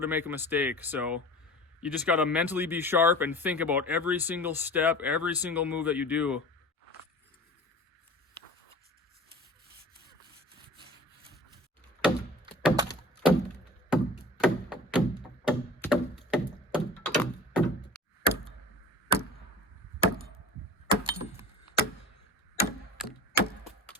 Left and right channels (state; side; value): normal; both; correlation 0.39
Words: to make a mistake, so you just got to mentally be sharp and think about every single step, every single move that you do.